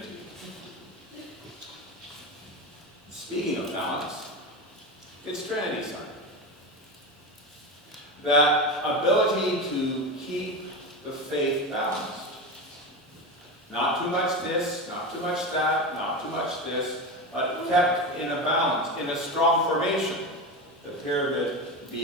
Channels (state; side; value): normal; both; correlation 0.21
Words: Speaking of balance, it's Trinity Sunday. That ability to keep the faith balanced. Not too much this, not too much that, not too much this, but kept in a balance, in a strong formation. The pyramid